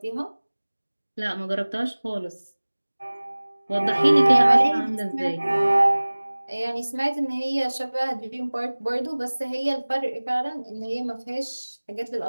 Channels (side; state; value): both; inverted; correlation -1.00